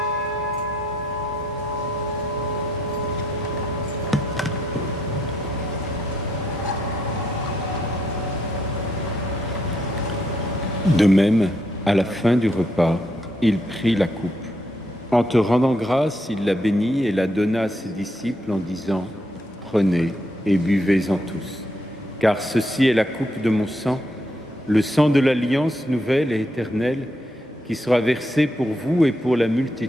De même, à la fin du repas, il prit la coupe. En te rendant grâce, il la bénit et la donna à ses disciples en disant « Prenez et buvez-en tous, car ceci est la coupe de mon sang, le sang de l'alliance nouvelle et éternelle, qui sera versé pour vous et pour la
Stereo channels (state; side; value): normal; both; correlation 0.76